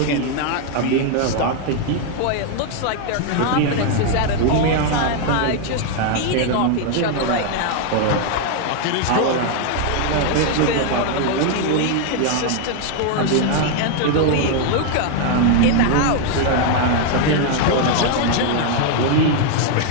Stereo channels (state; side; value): different; both; correlation 0.00